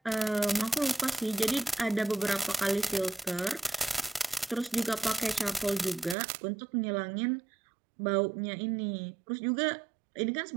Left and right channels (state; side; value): drops out; left; at 6.2 s